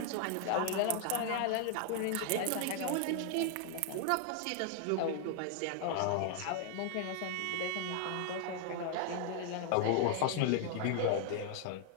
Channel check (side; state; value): both; different; correlation 0.00